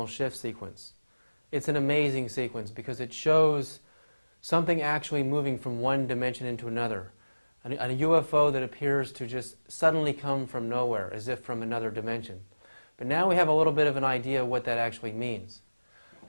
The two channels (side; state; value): both; inverted; correlation -1.00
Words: shift sequence. It's an amazing sequence because it shows something actually moving from one dimension into another. A UFO that appears to just suddenly come from nowhere, as if from another dimension. But now we have a little bit of an idea of what that actually means.